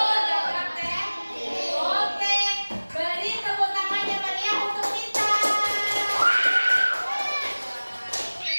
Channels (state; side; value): inverted; both; correlation -1.00